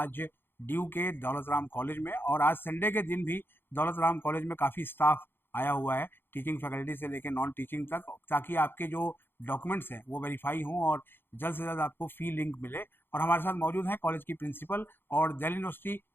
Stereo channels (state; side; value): late; right; 0.10 ms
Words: ड्यू के दौलत राम कॉलेज में। और आज संडे के दिन भी दौलत राम कॉलेज में काफ़ी स्टाफ आया हुआ है, टीचिंग फैकल्टी से लेकर नॉन टीचिंग तक, ताकि आपके जो डॉक्यूमेंट्स हैं वो वेरीफाई हों और जल्द से जल्द आपको फी लिंक मिले। और हमारे साथ मौजूद हैं कॉलेज की प्रिंसिपल और दिल्ली यूनिवर्सिटी